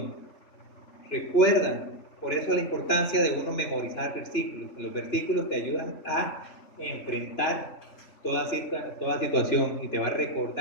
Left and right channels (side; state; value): right; late; 2.9 ms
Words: Recuerdan, por eso la importancia de uno memorizar versículos. Los versículos te ayudan a enfrentar toda situación y te va a